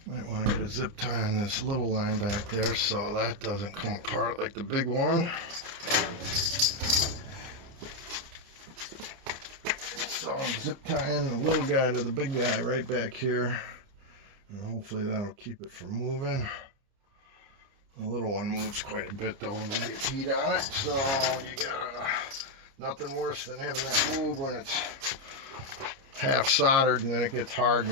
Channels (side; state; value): left; late; 29 ms